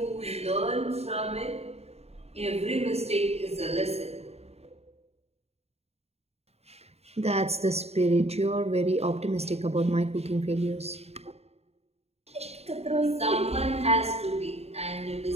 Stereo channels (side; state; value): left; late; 0.30 ms